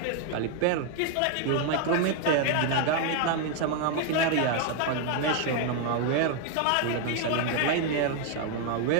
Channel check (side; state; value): both; different; correlation 0.00